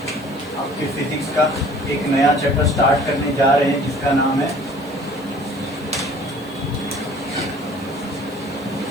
आपके फिजिक्स का एक नया चैप्टर स्टार्ट करने जा रहे हैं जिसका नाम है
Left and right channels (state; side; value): noise; right; hiss, 25 dB below the sound